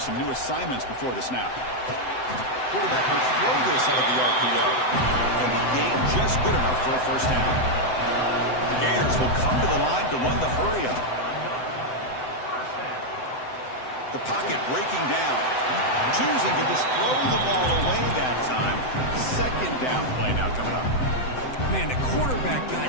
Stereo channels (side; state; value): right; late; 7.9 ms